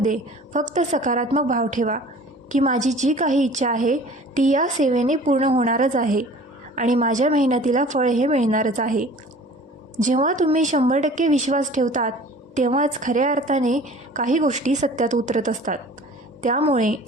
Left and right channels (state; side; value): normal; both; correlation 0.46